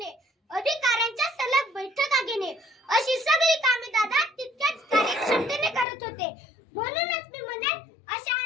अधिकाऱ्यांच्या सलग बैठका घेणे, अशी सगळी कामे दादा तितक्याच कार्यक्षमतेने करत होते. म्हणूनच मी म्हणेन, अशा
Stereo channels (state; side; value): drops out; right; at 5.9 s